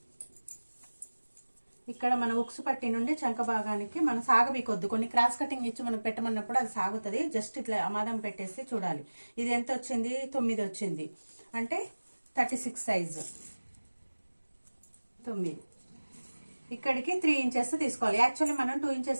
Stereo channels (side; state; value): both; inverted; correlation -1.00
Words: ఇక్కడ మన ఉక్సు పట్టి నుండి చంక భాగానికి మనం సాగబీకొద్దు. కొన్ని క్రాస్ కటింగ్ ఇచ్చి మనం పెట్టమన్నప్పుడు అది సాగుతుంది. జస్ట్ ఇట్లా అమాదం పెట్టేసి చూడాలి. ఇది ఎంత వచ్చింది? 9 వచ్చింది. అంటే 36 సైజు 9. ఇక్కడికి 3 ఇంచెస్ తీసుకోవాలి. యాక్చువల్లీ మనం 2